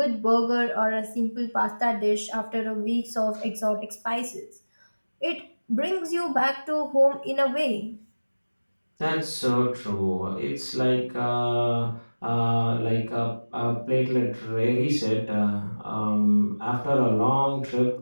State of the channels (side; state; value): both; inverted; correlation -1.00